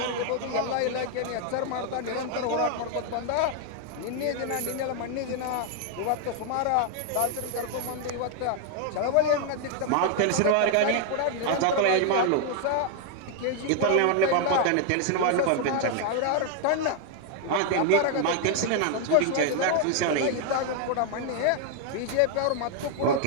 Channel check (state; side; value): different; both; correlation 0.01